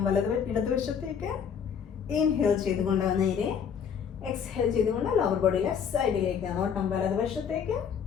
ഇടതുവശത്തേക്ക്. ഇൻഹേൽ ചെയ്തുകൊണ്ട് നേരെ, എക്സ്ഹേൽ ചെയ്തുകൊണ്ട് ലോവർ ബോഡി ലെഫ്റ്റ് സൈഡിലേക്ക്, നോട്ടം വലതുവശത്തേക്ക്.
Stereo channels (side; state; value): right; quieter; 7.4 dB